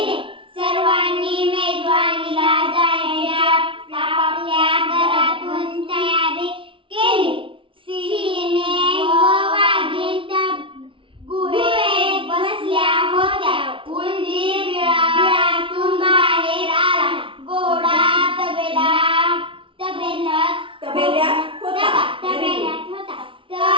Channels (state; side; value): late; left; 0.25 ms